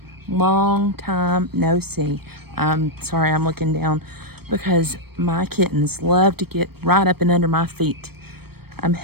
Long time no see. I'm sorry I'm looking down because my kittens love to get right up and under my feet. I'm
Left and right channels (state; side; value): late; left; 0.96 ms